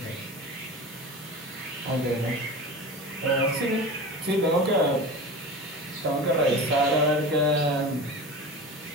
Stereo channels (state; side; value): normal; both; correlation 0.31